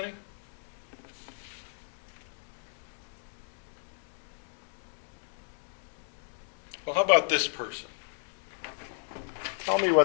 Well, how about this person? Tell me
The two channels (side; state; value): right; silent; digital silence